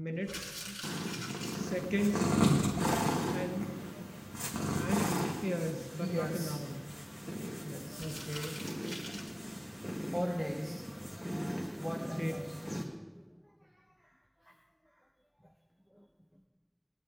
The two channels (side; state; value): both; identical; correlation 1.00